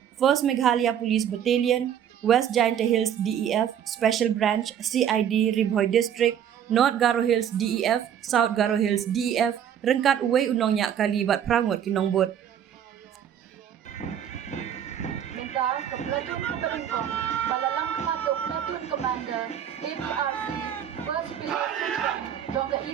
1st Meghalaya Police Battalion, West Giant Hills DEF, Special Branch CID Ribhoy District, North Garo Hills DEF, South Garo Hills DEF, rengkat uwe unong nyak kali bat prangut ki nong bot. Menta ka platoon ka Bengkong, balalang kamato platoon commander ABRC 1st Police dong ka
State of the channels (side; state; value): left; quieter; 9.4 dB